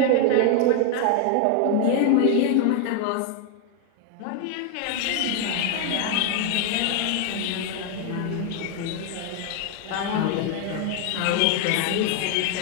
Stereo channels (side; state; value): both; different; correlation 0.00